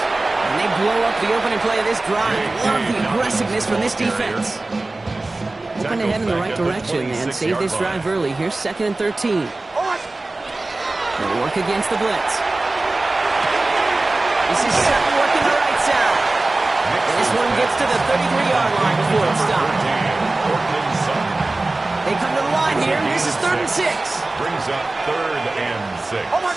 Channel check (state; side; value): quieter; left; 3.0 dB